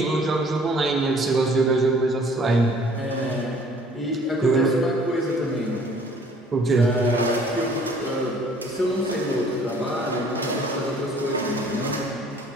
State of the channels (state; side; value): normal; both; correlation 0.55